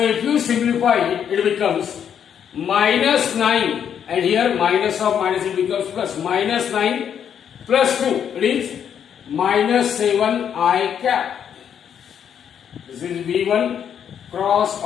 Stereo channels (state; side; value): quieter; right; 8.5 dB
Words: you simplify it, it becomes minus 9 and here minus of minus it becomes plus. Minus 9 plus 2, it is minus 7 I cap. This is V1 cross